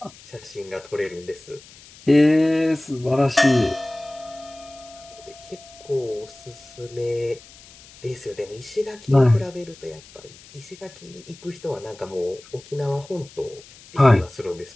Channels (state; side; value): noise; left; hiss, 22 dB below the sound